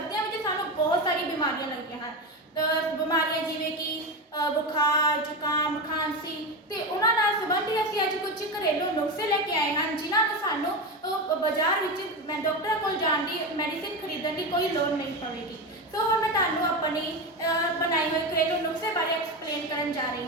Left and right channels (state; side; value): normal; both; correlation 0.18